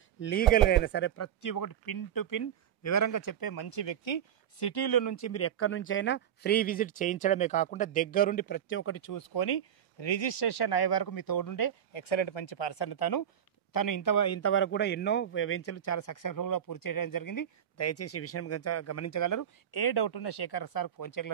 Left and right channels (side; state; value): left; quieter; 9.6 dB